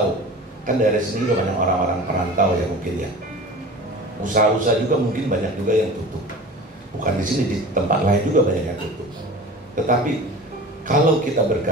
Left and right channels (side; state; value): both; normal; correlation 0.37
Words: Kan daerah sini juga banyak orang-orang perantau ya mungkin ya. Usaha-usaha juga mungkin banyak juga yang tutup. Bukan di sini, di tempat lain juga banyak yang tutup. Tetapi kalau kita